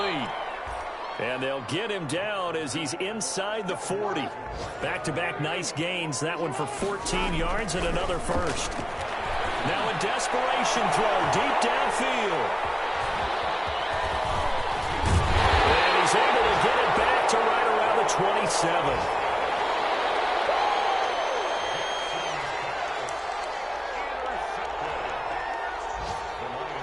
And they'll get him down as he's inside the 40. Back-to-back nice gains, that one for 14 yards and another first. Now a desperation throw deep downfield. He's able to get it back to right around the 27.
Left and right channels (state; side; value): identical; both; correlation 1.00